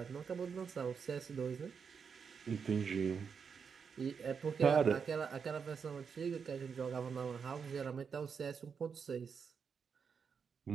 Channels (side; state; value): left; quieter; 6.2 dB